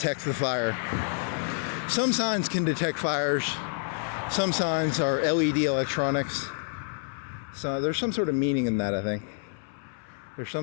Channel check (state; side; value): silent; right; 56 dB below the other